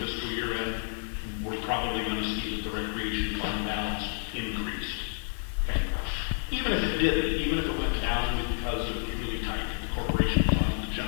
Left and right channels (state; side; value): silent; right; 58 dB below the other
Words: fiscal year end, we're probably gonna see that the recreation fund balance increased. Okay. Even if it didn't, even if it went down because it was really tight, the corporation fund, the